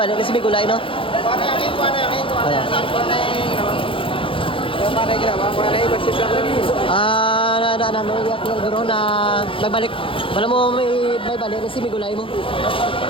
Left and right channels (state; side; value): late; right; 0.25 ms